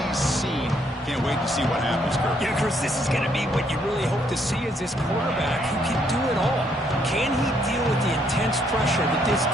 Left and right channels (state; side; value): normal; both; correlation 0.71